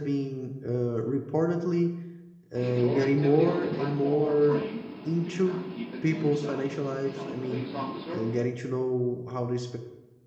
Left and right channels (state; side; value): identical; both; correlation 1.00